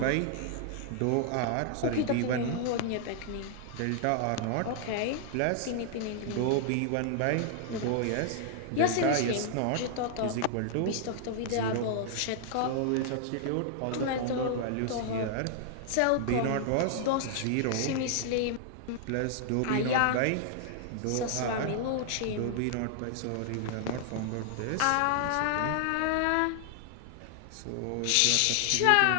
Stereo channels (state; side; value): different; both; correlation -0.01